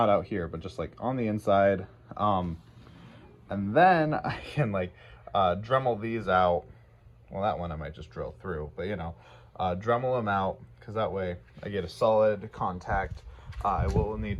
out here, but just like on the inside. And then I can like Dremel these out. Well, that one I might just drill through, but you know, Dremel them out, because that way I get a solid contact. I will need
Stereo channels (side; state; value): both; identical; correlation 1.00